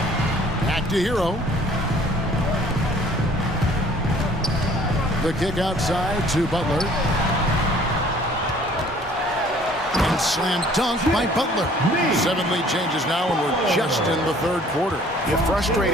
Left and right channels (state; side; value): normal; both; correlation 0.55